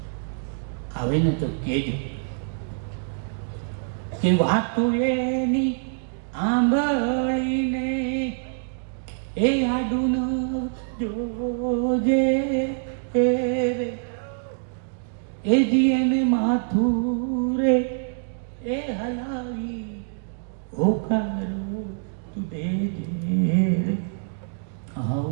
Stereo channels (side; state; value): left; silent; digital silence